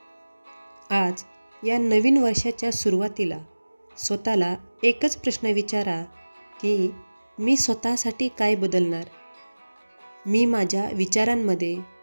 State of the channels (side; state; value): both; inverted; correlation -1.00